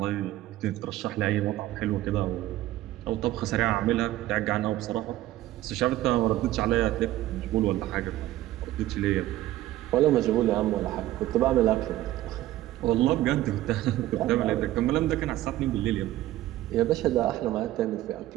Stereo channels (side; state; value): left; quieter; 15.1 dB